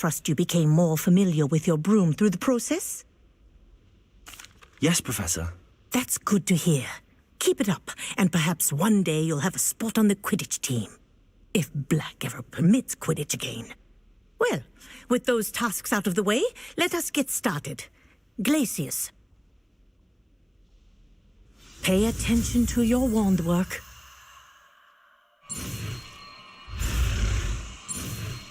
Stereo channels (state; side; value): identical; both; correlation 1.00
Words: you became more familiar with your broom through the process? Yes, Professor. That's good to hear. Keep it up, and perhaps one day you'll have a spot on the Quidditch team. If Black ever permits Quidditch again. Well, with those tasks out of the way, let us get started. Glacius. Pay attention to your wand work.